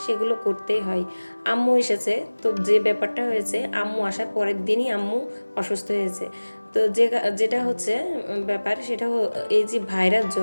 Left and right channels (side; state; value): both; inverted; correlation -1.00